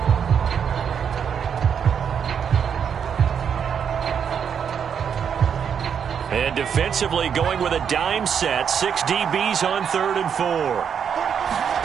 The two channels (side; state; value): left; quieter; 7.6 dB